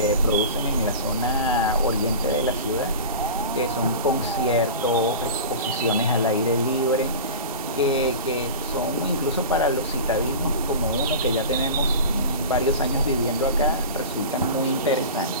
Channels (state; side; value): inverted; both; correlation -0.32